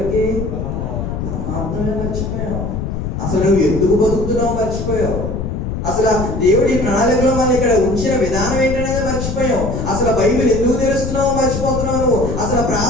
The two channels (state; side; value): noise; left; rumble, 4 dB below the sound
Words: పరమాత్మనే మర్చిపోయాం. అసలు నువ్వు ఎందుకు బతుకుతున్నావు మర్చిపోయావు. అసలు దేవుడి ప్రణాళికలో మనం ఇక్కడ ఉంచిన విధానం ఏంటనేది మర్చిపోయాం. అసలు బైబిల్ ఎందుకు తెలుస్తున్నావు మర్చిపోతున్నావు నువ్వు. అసలు